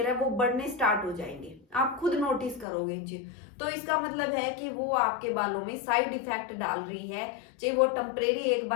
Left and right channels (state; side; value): drops out; right; at 2.7 s